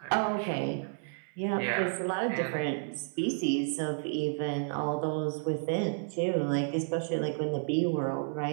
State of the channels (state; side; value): silent; left; 56 dB below the other